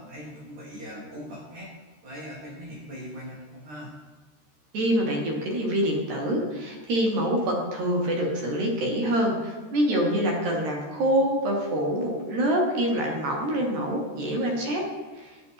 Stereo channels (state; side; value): late; left; 13 ms